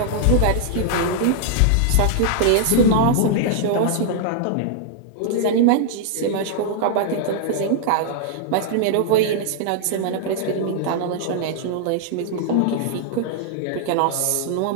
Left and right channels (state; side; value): different; both; correlation -0.01